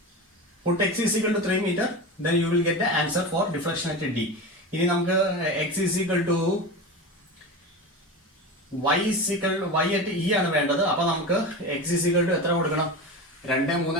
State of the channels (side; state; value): both; normal; correlation 0.26